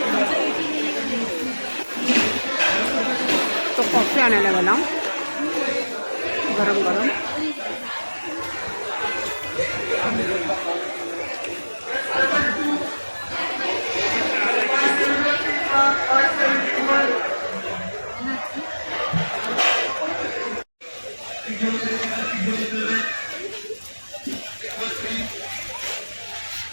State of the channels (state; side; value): inverted; both; correlation -1.00